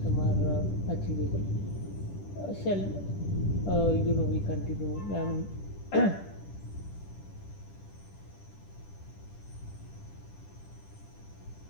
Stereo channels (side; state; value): right; late; 10 ms